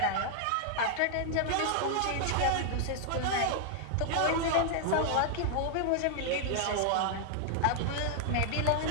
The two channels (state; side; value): different; both; correlation 0.00